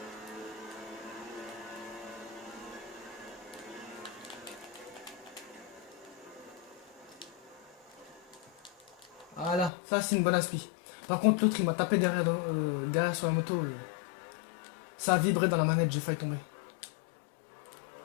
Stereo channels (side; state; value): right; drops out; at 9.7 s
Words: Voilà, ça c'est une bonne aspi. Par contre, l'autre il m'a tapé derrière, derrière sur la moto. Ça a vibré dans la manette, j'ai failli tomber.